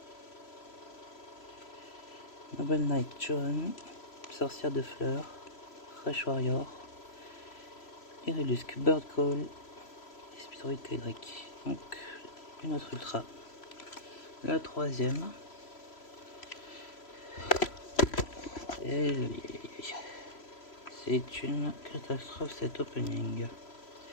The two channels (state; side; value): late; right; 3.0 ms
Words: Noble Knight John, Sorcière de Fleurs, Fresh Warrior, Iridusc Bird Call et Speedroid Kydrake. Donc une autre ultra. La troisième. Et c'est une catastrophe cet opening.